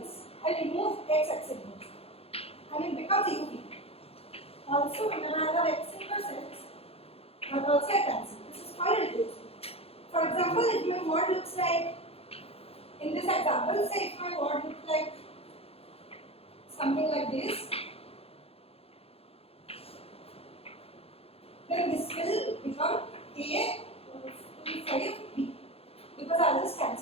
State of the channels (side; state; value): right; late; 0.29 ms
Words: I remove X inverse and it becomes UV. Also when I have X inverse X, that also I cancel. This is called reduced. For example, if my word looks like, in this example, say if my word looks like something like this, then this will become A to 5 B, because I'll just